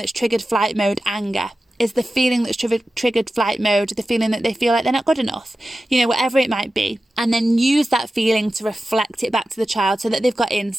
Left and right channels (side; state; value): both; normal; correlation 0.93